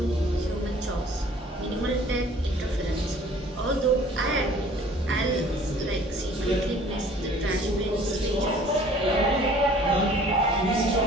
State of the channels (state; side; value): normal; both; correlation 0.52